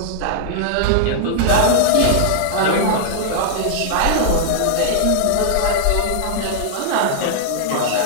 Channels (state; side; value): different; both; correlation -0.01